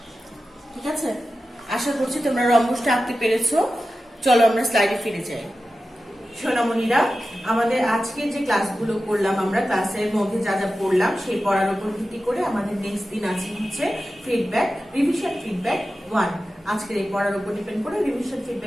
ঠিক আছে। আশা করছি তোমরা রম্বসটা আঁকতে পেরেছো। চলো আমরা স্লাইডে ফিরে যাই। সোনামণিরা, আমাদের আজকের যে ক্লাসগুলো করলাম, আমরা ক্লাসের মধ্যে যা যা পড়লাম সেই পড়ার উপর ভিত্তি করে আমাদের নেক্সট দিন আছে হচ্ছে ফিডব্যাক, রিভিশন ফিডব্যাক 1। আজকের এই পড়ার উপর ডিপেন্ড করে রিভিশন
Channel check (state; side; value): normal; both; correlation 0.93